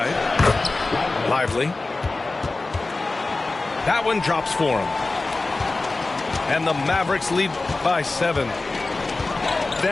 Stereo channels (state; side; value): quieter; right; 3.3 dB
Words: Lively. That one drops for him. And the Mavericks lead by 7.